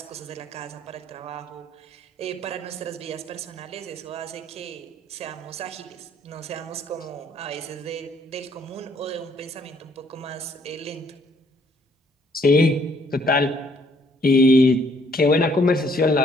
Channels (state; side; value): normal; both; correlation 0.65